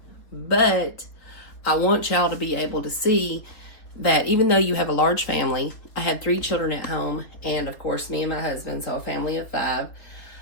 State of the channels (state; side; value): late; right; 3.6 ms